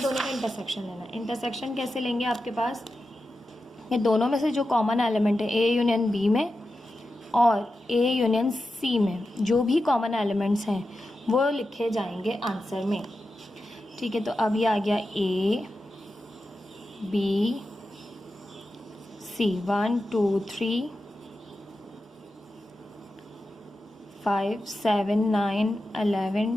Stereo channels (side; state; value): both; normal; correlation 0.91